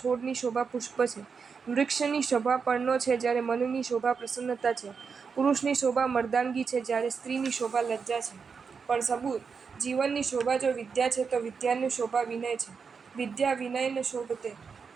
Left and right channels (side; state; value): left; quieter; 5.7 dB